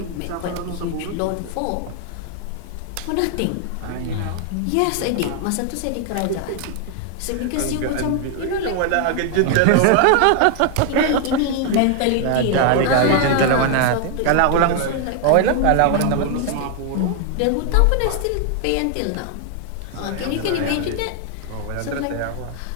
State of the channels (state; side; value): different; both; correlation 0.00